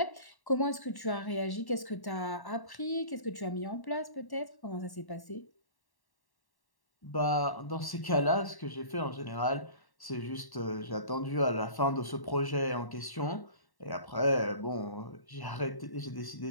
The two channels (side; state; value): right; late; 1.1 ms